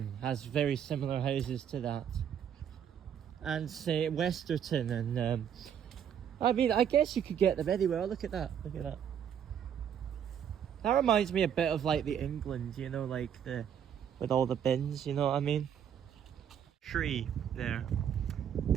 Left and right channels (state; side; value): quieter; left; 8.8 dB